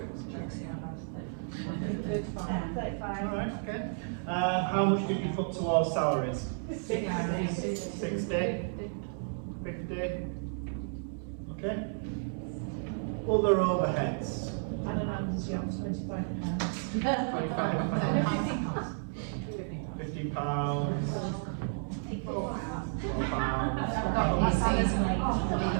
35. Alright, okay. How much did you put towards salaries? 60? 50? Okay. Other overheads? I don't know, this year was £25. £50.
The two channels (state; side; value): silent; left; 56 dB below the other